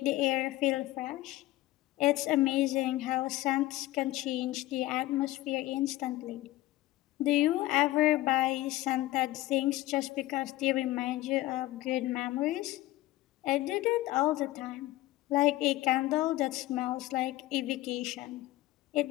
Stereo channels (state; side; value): quieter; right; 16.9 dB